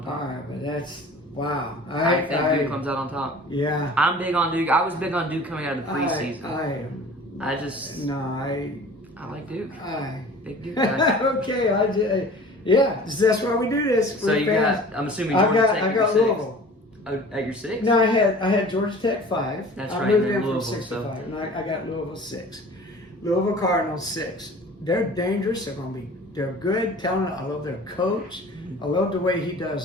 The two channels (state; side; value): normal; both; correlation 0.44